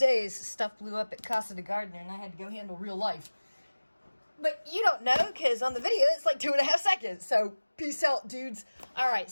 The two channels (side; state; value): both; inverted; correlation -1.00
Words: Stuff blew up at Casa de Gardener, and I had to go handle real life. But you don't know, because on the video, it's like 2.5 seconds. So, peace out, dudes. All right,